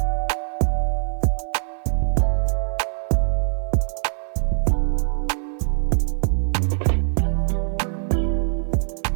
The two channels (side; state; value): left; silent; digital silence